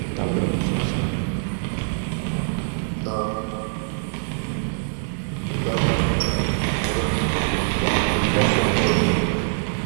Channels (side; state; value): left; silent; digital silence